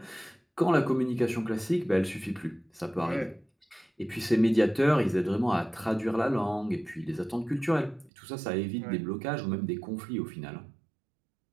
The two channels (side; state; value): left; drops out; at 8.1 s